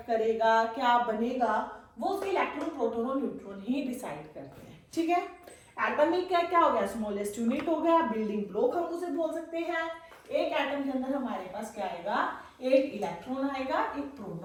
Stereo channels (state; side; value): identical; both; correlation 1.00